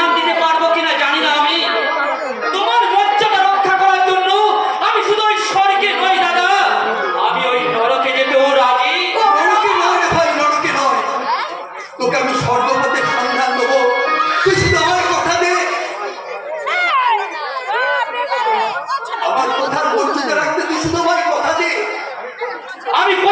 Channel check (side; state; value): both; identical; correlation 1.00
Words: দিতে পারবো কিনা জানি না আমি। তোমার লজ্জাটা রক্ষা করার জন্য আমি শুধু ওই স্বর্গে নই দাদা, আমি ওই নরকে যেতেও রাজি। নরকে নয় রে ভাই, নরকে নয়। তোকে আমি স্বর্গপথের সন্ধান দেবো, তুই শুধু আমার কথা দে। আমার কথার মর্যাদা রাখতে তুই শুধু আমার কথা দে। আমি